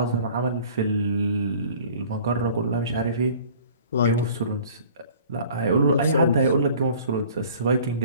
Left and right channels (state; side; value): inverted; both; correlation -0.49